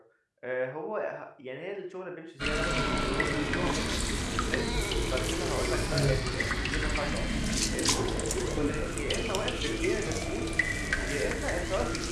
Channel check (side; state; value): both; identical; correlation 1.00